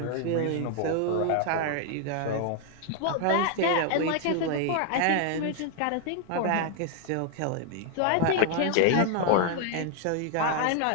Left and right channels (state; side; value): different; both; correlation 0.00